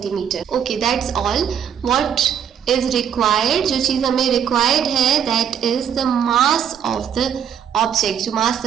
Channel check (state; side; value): quieter; left; 8.5 dB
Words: Okay, that's all. What is required? जो चीज़ हमें required है that is the mass of the object. जो मास